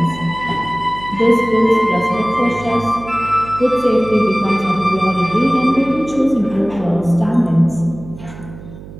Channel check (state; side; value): noise; right; hum, 16 dB below the sound